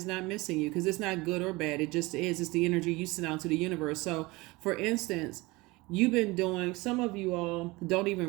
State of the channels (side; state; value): left; quieter; 22.6 dB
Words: not missing you, because it's not good or bad. It just is. It's the energy you send out to the universe. So for instance, you've been doing, some of you all don't